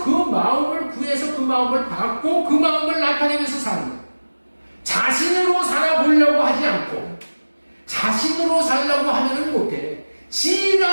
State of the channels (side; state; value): both; inverted; correlation -1.00